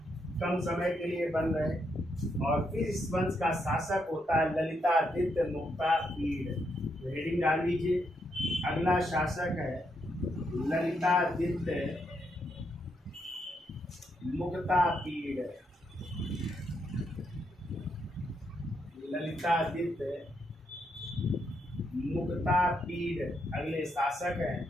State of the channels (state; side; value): normal; both; correlation 0.79